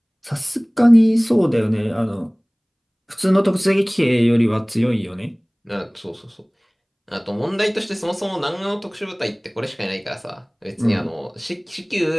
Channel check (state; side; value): identical; both; correlation 1.00